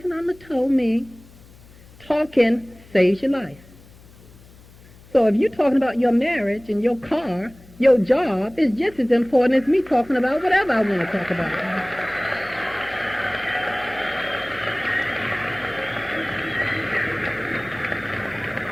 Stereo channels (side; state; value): left; noise; hum, 23 dB below the sound